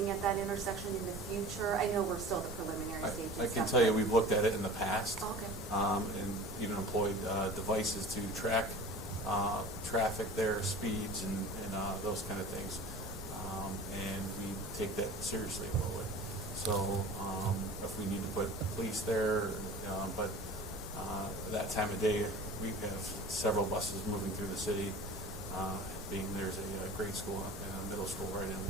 at that intersection in the future? I know we're still at the preliminary stage and I can stuff, tell you, but- we've looked at it in the past. Oh, okay. And even employed devices to track traffic there, speeds, and those kind of things. And we take that seriously a little bit. So if we need to put police there, but that time of day, we have several buses moving through the city, being there's a grade school and a middle school right in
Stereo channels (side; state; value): both; normal; correlation 0.39